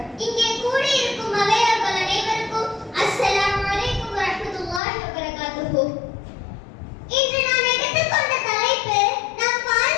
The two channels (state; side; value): drops out; right; at 4.8 s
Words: இங்கே கூடியிருக்கும் அவையார்கள் அனைவருக்கும் அஸ்ஸலாமு அலைக்கும் வரஹ்மத்துல்லாஹி வபரகாத்துஹு. இன்று நான் எடுத்துக்கொண்ட தலைப்பு நம்